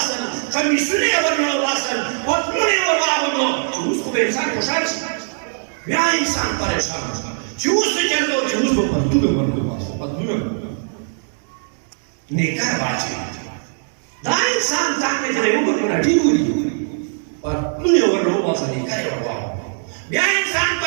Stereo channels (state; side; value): silent; left; digital silence